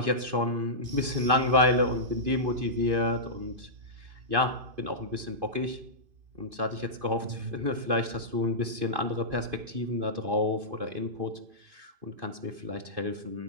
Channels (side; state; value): left; late; 2.5 ms